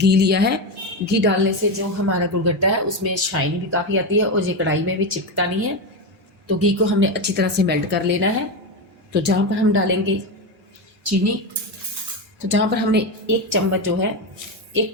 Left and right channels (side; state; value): both; normal; correlation 0.14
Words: लिया है, घी डालने से जो हमारा गुड़गट्टा है उसमें शाइन भी काफ़ी आती है और ये कढ़ाई में भी चिपकता नहीं है। तो घी को हमने अच्छी तरह से मेल्ट कर लेना है। तो जहाँ पर हम डालेंगे चीनी, तो जहाँ पर हमने एक चम्मच जो है 1